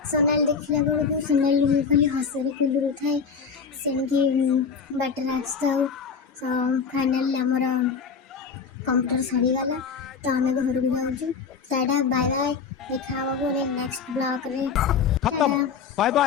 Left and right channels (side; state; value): right; quieter; 5.9 dB